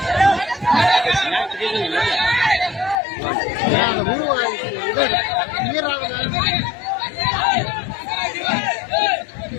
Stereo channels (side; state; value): right; drops out; at 3.0 s